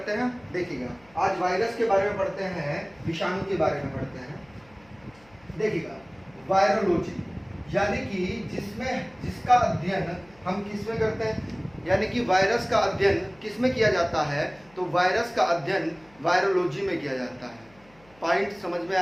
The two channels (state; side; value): noise; left; hum, 29 dB below the sound